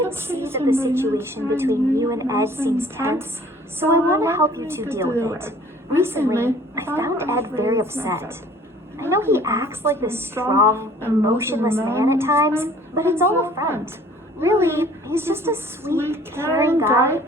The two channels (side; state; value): both; normal; correlation 0.53